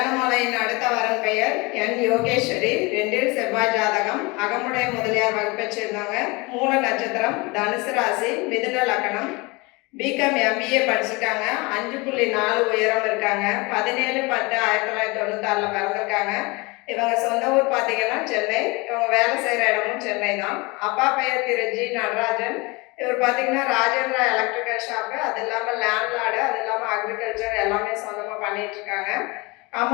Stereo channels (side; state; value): right; quieter; 25.8 dB